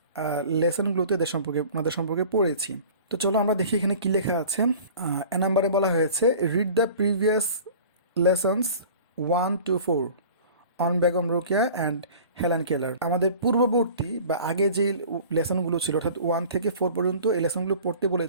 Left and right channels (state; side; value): inverted; both; correlation -0.43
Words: লেসনগুলোতে ওনাদের সম্পর্কে পড়েছি। তো চলো আমরা দেখি এখানে কি লেখা আছে। এ নাম্বারে বলা হয়েছে read the previous lessons 1-4 on Begum Rokeya and Helen কেলার। আমাদের পূর্ববর্তী বা আগে যে লেসনগুলো ছিল অর্থাৎ 1 থেকে 4 পর্যন্ত এই লেসনগুলো পড়তে